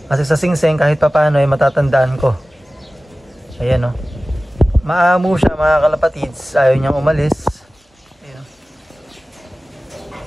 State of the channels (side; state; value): both; normal; correlation 0.97